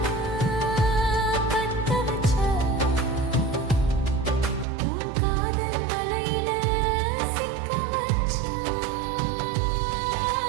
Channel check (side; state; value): left; drops out; at 4.7 s